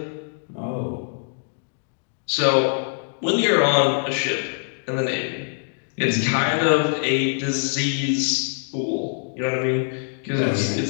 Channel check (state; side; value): silent; right; digital silence